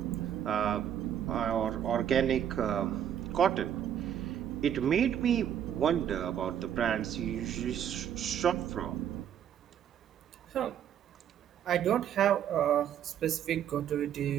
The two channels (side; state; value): left; quieter; 9.6 dB